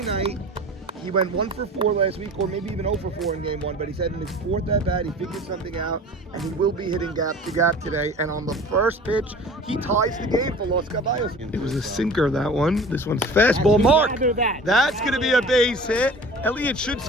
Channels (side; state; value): both; normal; correlation 0.41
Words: night he went 1 for 4 last week, or maybe even 0 for 4 in game 1. But he said in his 4th at bat, he figured something out, and he will be hitting gap to gap today. And on the first pitch, he ties the game for Los Caballos. It was a sinker, that one. This one's fastball. Mark. That's going to be a base hit. Elliott should